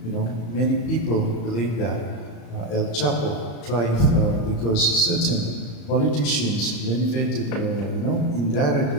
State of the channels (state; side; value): late; right; 35 ms